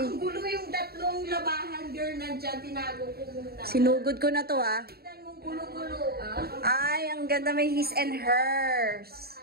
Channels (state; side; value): late; left; 0.45 ms